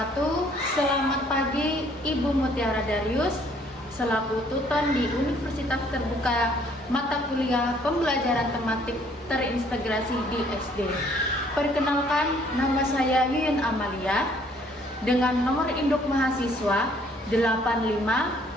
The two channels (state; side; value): normal; both; correlation 0.62